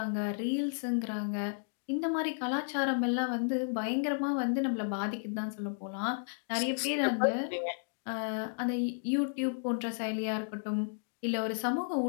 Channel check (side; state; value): right; silent; digital silence